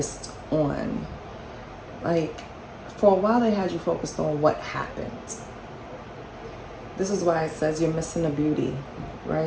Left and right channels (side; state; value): both; identical; correlation 1.00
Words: on, like, for a while they had you focused on what happened. This is why it says you're missing the beauty,